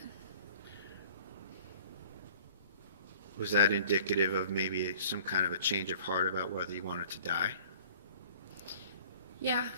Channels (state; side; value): inverted; both; correlation -0.50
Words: Was that indicative of maybe some kind of a change of heart about whether you wanted to die? Yeah,